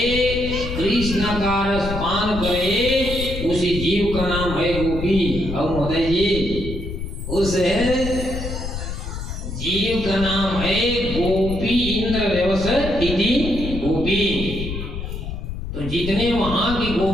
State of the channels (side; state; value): left; noise; rumble, 6 dB below the sound